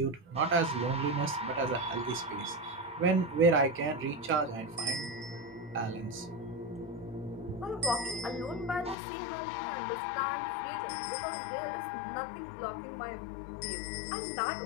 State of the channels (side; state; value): right; drops out; at 9.0 s